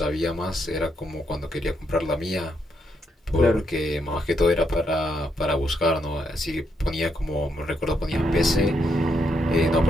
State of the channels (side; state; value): both; normal; correlation 0.78